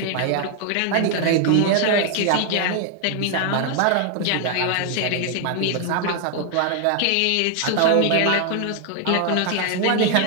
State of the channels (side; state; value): both; different; correlation 0.00